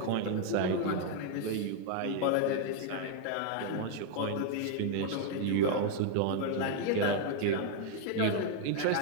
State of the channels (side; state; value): both; different; correlation 0.00